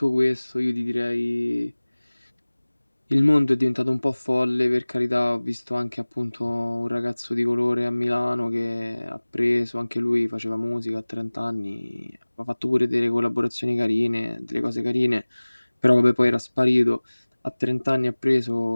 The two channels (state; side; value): inverted; both; correlation -1.00